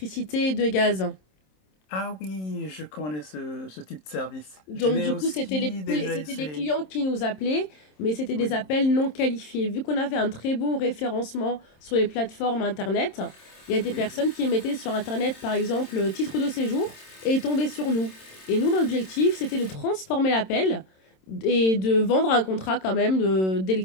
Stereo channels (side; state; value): right; late; 27 ms